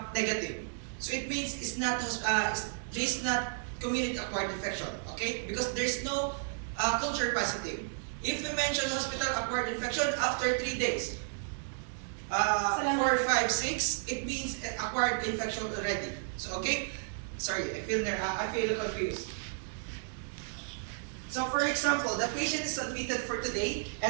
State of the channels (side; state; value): left; silent; 56 dB below the other